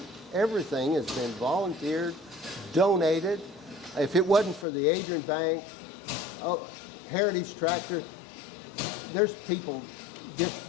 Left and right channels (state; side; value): drops out; right; at 4.7 s